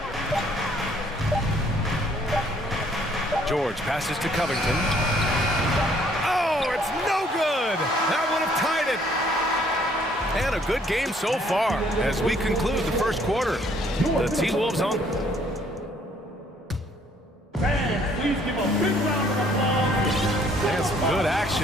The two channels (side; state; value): both; normal; correlation 0.63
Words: George passes to Covington. Oh, it's no good. That would have tied it. And a good game so far as we conclude the first quarter. The T-Wolves on. Fans, please give a big round of applause. And some good